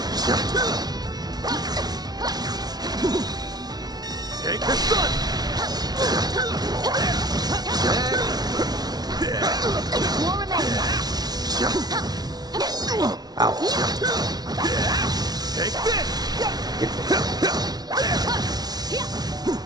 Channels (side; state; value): left; late; 0.19 ms